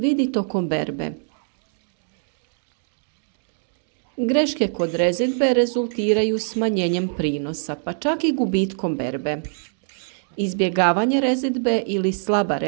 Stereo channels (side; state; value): left; silent; digital silence